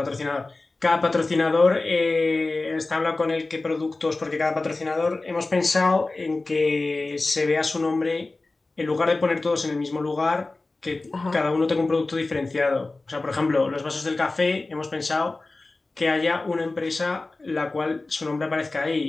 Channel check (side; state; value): right; quieter; 3.3 dB